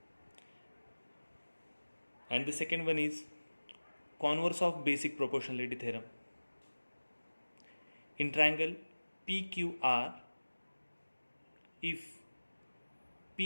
And the second one is converse of basic proportionality theorem. In triangle PQR, if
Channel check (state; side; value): inverted; both; correlation -1.00